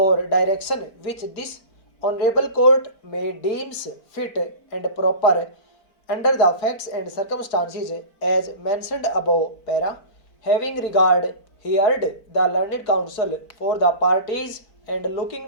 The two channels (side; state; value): right; late; 4.5 ms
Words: direction which this honorable court may deems fit and proper under the facts and circumstances as mentioned above para, having regard heard the learned counsel for the parties and